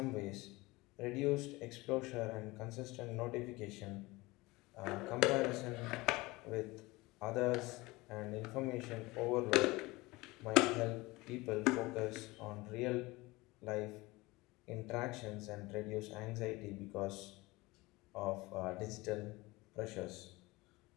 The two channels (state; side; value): quieter; right; 21.8 dB